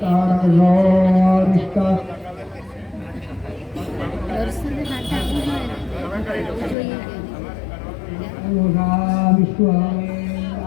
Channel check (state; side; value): drops out; right; at 6.8 s